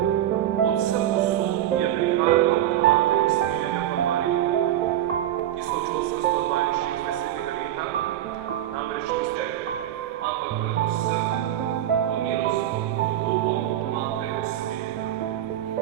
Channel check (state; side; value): quieter; left; 12.1 dB